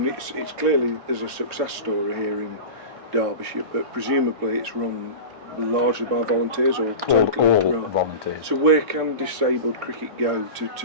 it's clearly there's a success story here Derbyshire, but presumably it's run largely by volunteers or all totally right. volunteers. So where can disabled cricket go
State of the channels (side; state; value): left; late; 1.6 ms